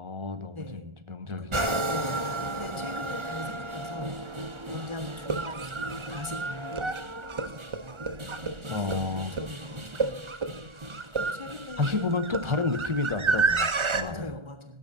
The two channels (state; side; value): late; left; 1.4 ms